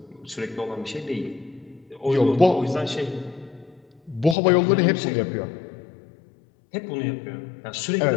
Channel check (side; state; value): right; drops out; at 4.4 s